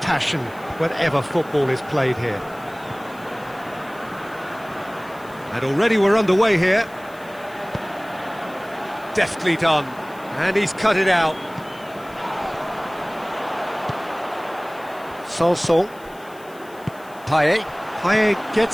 passion whenever football is played here. And already we're underway here. Deftly done. And he's cut it out. Sanson. Payet. Payet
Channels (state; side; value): noise; left; hiss, 25 dB below the sound